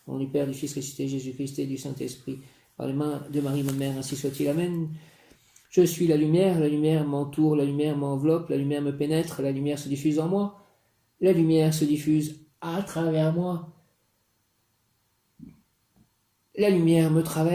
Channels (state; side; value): identical; both; correlation 1.00